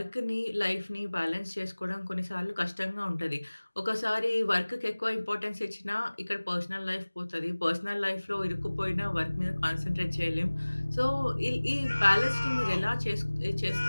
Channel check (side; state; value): both; inverted; correlation -1.00